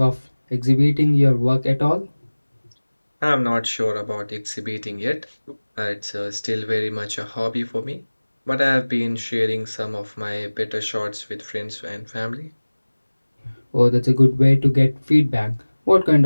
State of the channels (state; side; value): inverted; both; correlation -1.00